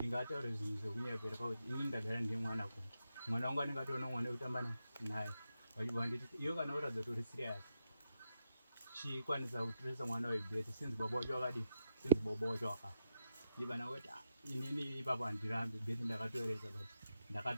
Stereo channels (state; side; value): inverted; both; correlation -0.85